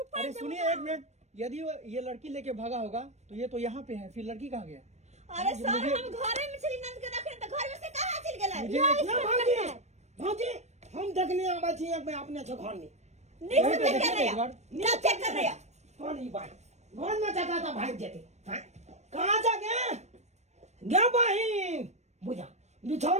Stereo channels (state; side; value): late; left; 0.32 ms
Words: ऊपर अरे से सुनिए एक मिनट, यदि ये लड़की लेके भागा होगा तो ये तो यहाँ पे है, फिर लड़की कहाँ गया? अरे सर हम घरे में चली नंद के रखे तो घर में से कहां चल गेलै? मुझे ना भागी भागी हम देखने आबे छी एक में अपने छ घर में नहीं वहीं से पे चेक कर देखिए रहे एक बार। क्या चेक कर रहे हैं? कौन ई बात घर में जाता था भाग जेते हाँ? कहाँ जा गया गया बहिन बुझा